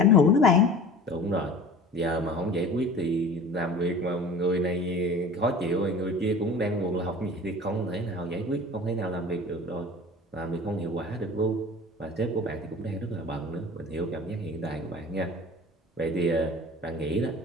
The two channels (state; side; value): normal; both; correlation 0.41